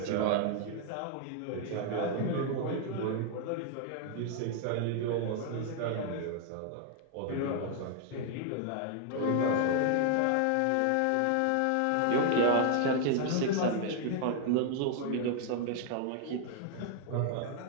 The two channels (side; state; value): both; different; correlation 0.00